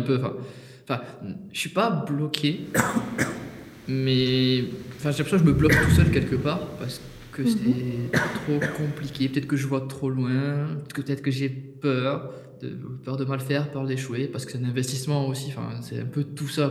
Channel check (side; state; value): both; identical; correlation 1.00